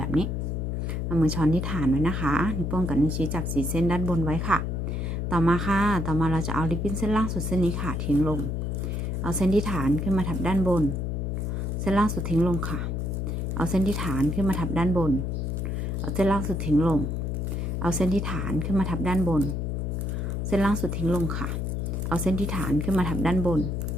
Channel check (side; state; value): left; noise; hum, 1 dB below the sound